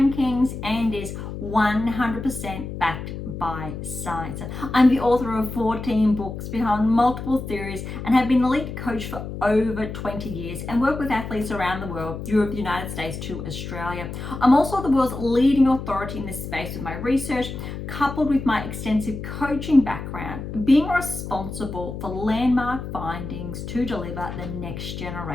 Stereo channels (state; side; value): noise; left; hum, 8 dB below the sound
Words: and is 100% backed by science. I'm the author of 14 books behind multiple theories and have been a elite coach for over 20 years and work with athletes around the world, Europe, the United States to Australia. I'm also the world's leading authority in this space with my research, coupled with my extensive coaching background, being responsible for landmark findings to deliver the next